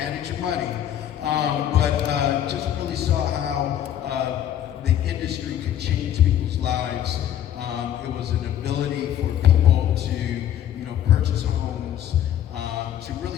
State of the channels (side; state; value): right; quieter; 10.8 dB